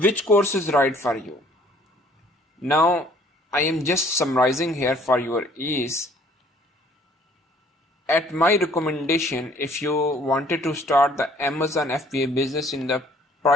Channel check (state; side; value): normal; both; correlation 0.58